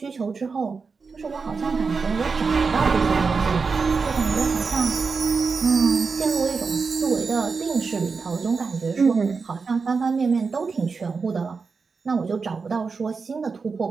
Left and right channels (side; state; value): left; quieter; 4.9 dB